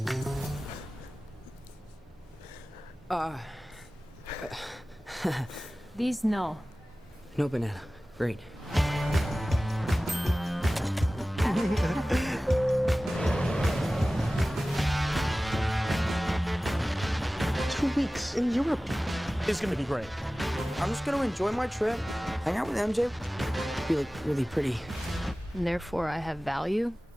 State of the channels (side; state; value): both; normal; correlation 0.97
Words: These no. No banana. Great. 2 weeks in Europe. It's gonna be great. I'm just gonna enjoy my trip, hang out with MJ, be like really pretty. And therefore I have value?